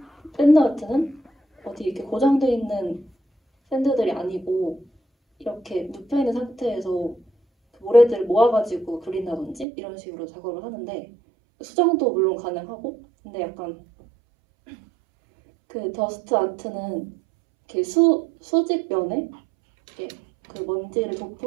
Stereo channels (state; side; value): drops out; left; at 9.7 s